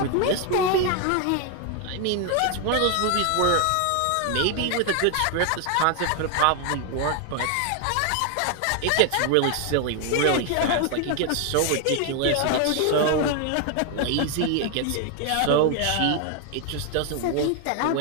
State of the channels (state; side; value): different; both; correlation 0.01